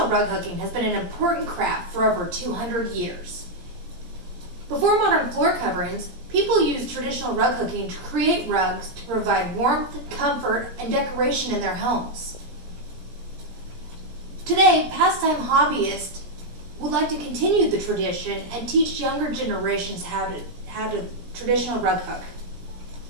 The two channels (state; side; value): late; left; 18 ms